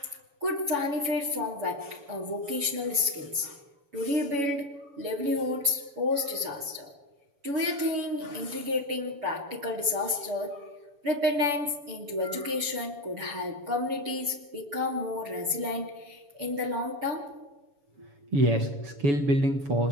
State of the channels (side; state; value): left; late; 7.0 ms